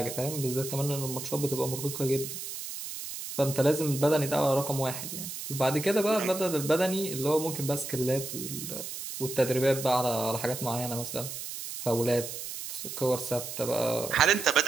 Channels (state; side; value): noise; right; hiss, 8 dB below the sound